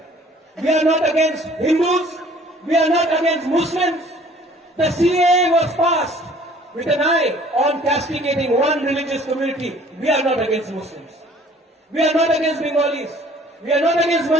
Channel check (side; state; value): both; normal; correlation 0.54